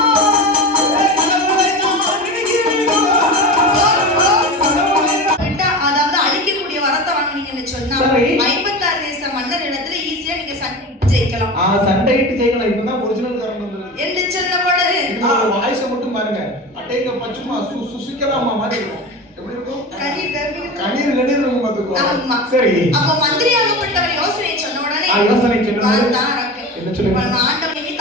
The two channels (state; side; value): normal; both; correlation 0.28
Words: அதாவது அழிக்கக்கூடிய வரத்தை வாங்கினீங்கன்னு சொன்னா 56 தேச மன்னர் இடத்துல ஈஸியா நீங்க ஜெயிக்கலாம். சண்டையிட்டு ஜெயிக்கலாம். இப்பதான் ஒரிஜினல் காரணம் வந்தது. என்று சொன்னபோது வாய்ஸ் மட்டும் பாருங்க. அட்டைங்க பச்சுமா சுசிக்கலாமா மாதிரி இருக்கும். எப்படி இருக்கும்? கண்ணீர் இருக்கும் பாத்துக்கோ. ஆமா. சரி. அப்ப மந்திரியாகப்பட்டவர் யோசனை சொன்ன உடனே யோசனை சொன்னது என்ன சொல்லுங்க? ஆண்டவனுக்கு